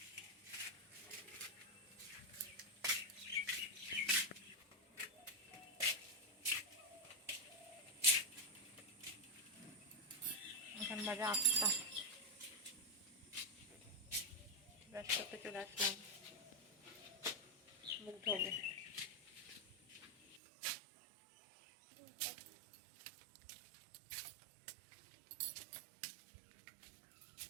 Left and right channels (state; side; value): drops out; left; at 20.4 s